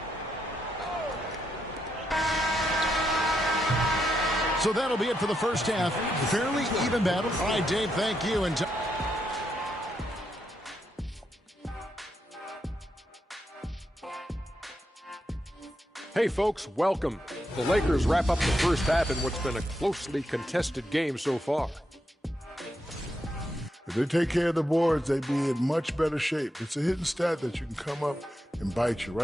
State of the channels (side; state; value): both; normal; correlation 0.82